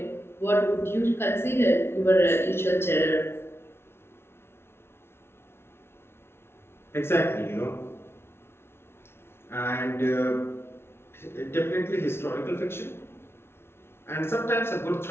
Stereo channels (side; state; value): right; late; 0.12 ms